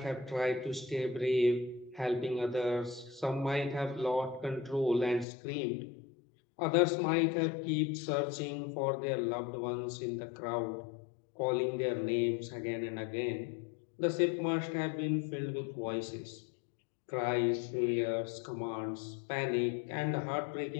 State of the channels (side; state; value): right; drops out; at 5.2 s